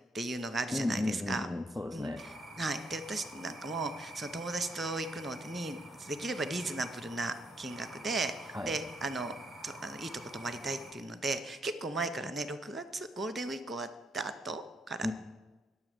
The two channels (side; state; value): both; normal; correlation 0.75